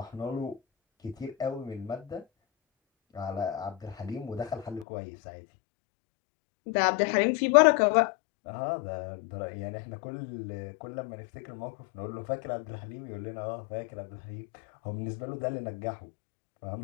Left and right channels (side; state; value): right; drops out; at 4.9 s